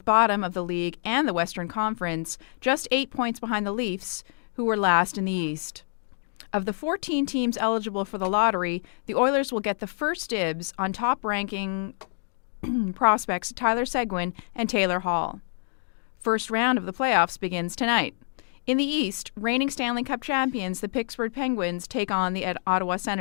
bottom of the league and the Western Conference, just 8 points behind the Leafs, who were last in the East. Of the 14 teams eligible for the lottery, the Oilers will get the first dibs on top-ranking prospects Tyler Seguin and Taylor Hall. First round of the playoffs begins tonight. In the East, reigning Stanley Cup champions, the Pittsburgh Penguins, take on the Ottawa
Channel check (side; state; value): right; silent; digital silence